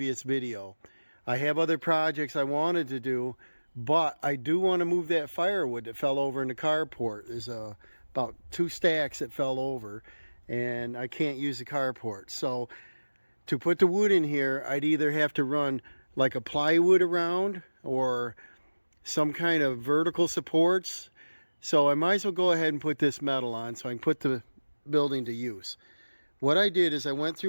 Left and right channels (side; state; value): both; inverted; correlation -1.00